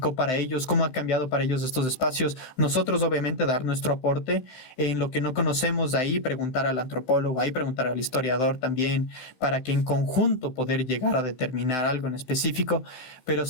para ellos, cómo ha cambiado para ellos estos espacios. Nosotros obviamente dar nuestro aporte en lo que no conocemos, ahí preguntar al antropólogo, ahí preguntar al historiador también, para que en conjunto poder llegar a determinar algo en específico, pero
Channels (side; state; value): right; late; 16 ms